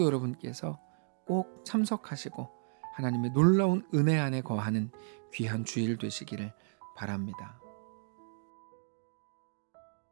여러분께서 꼭 참석하시고 하나님의 놀라운 은혜 안에 거하는 귀한 주일 되시기를 바랍니다.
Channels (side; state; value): left; silent; digital silence